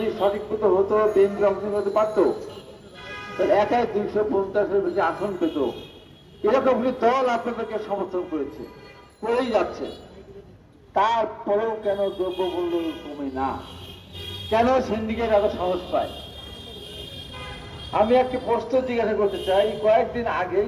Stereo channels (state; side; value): identical; both; correlation 1.00